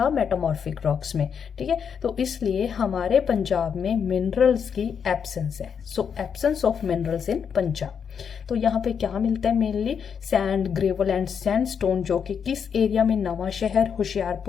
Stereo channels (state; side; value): quieter; right; 7.1 dB